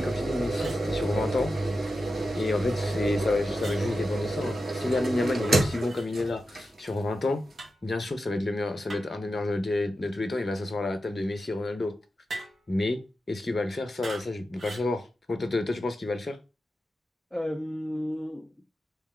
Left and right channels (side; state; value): both; normal; correlation 0.90